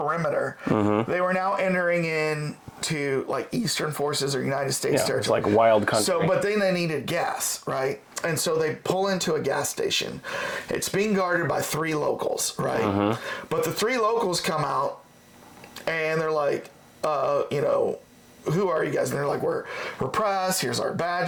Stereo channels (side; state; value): both; identical; correlation 1.00